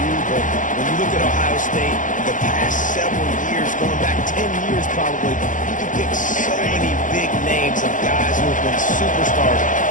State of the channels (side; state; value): right; late; 0.38 ms